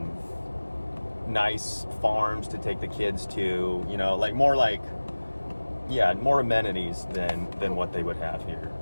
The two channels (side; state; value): both; inverted; correlation -1.00